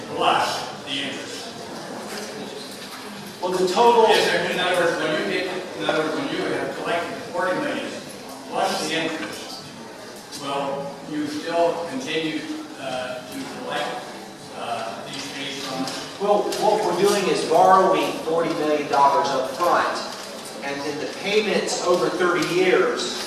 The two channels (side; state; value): both; identical; correlation 1.00